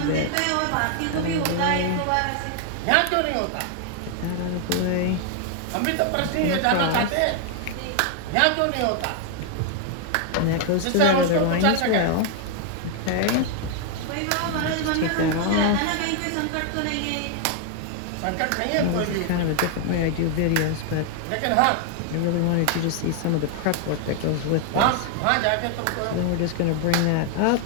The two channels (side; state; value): both; different; correlation 0.00